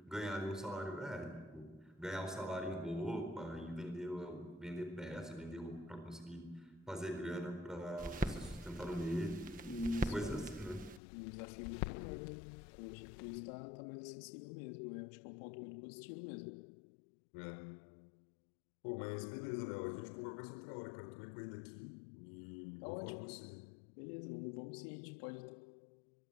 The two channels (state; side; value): drops out; right; at 11.0 s